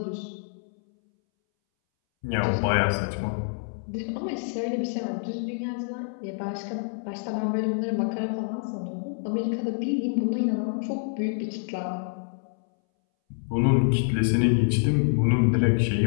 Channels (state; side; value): silent; right; 60 dB below the other